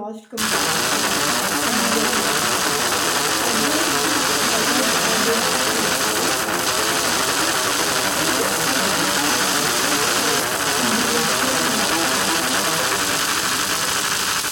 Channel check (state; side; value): identical; both; correlation 1.00